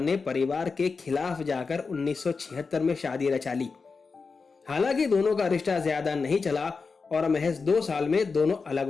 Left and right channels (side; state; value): right; quieter; 4.7 dB